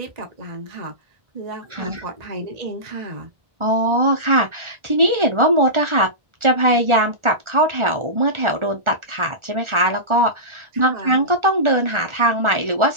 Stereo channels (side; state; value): left; late; 1.4 ms